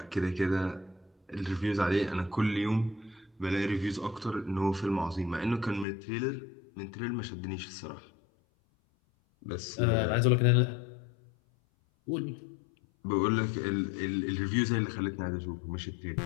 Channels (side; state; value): right; drops out; at 5.9 s